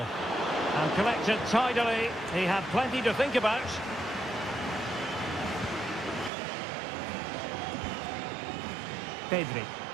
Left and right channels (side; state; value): left; drops out; at 6.3 s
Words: And collected tidily. He had plenty to think about. Pedri.